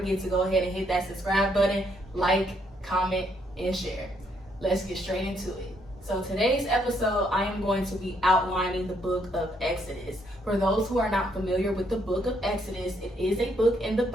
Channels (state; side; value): normal; both; correlation 0.72